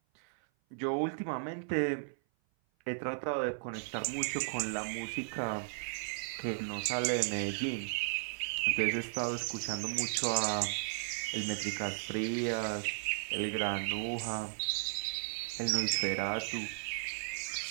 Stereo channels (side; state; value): left; silent; 54 dB below the other